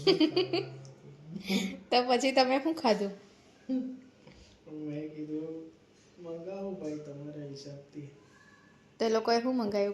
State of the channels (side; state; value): both; identical; correlation 1.00